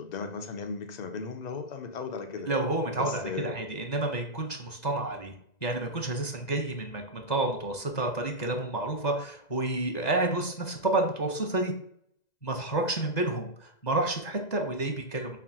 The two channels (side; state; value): right; late; 2.0 ms